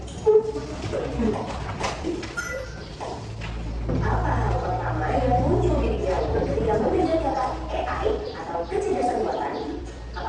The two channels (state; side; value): identical; both; correlation 1.00